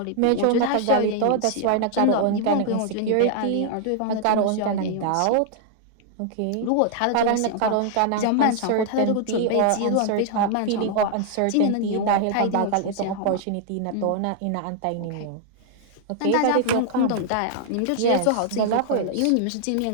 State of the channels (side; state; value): both; different; correlation -0.01